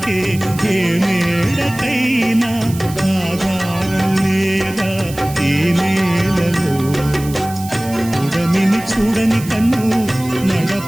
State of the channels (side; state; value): right; noise; hiss, 15 dB below the sound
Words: ఏ మేడకైనా ఆధారం లేదా ఈ నేలలో. ఉడమిని చూడని కన్ను